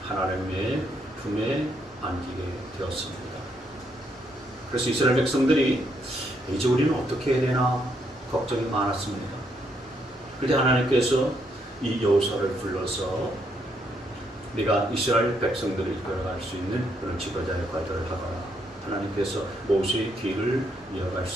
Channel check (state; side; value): normal; both; correlation 0.75